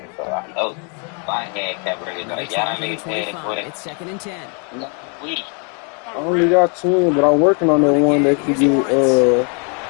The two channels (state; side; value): quieter; right; 38.0 dB